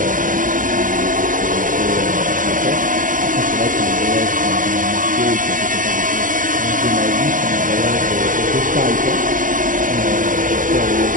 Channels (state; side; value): late; left; 0.39 ms